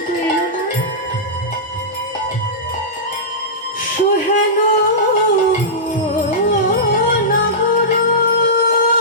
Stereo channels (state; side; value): normal; both; correlation -0.15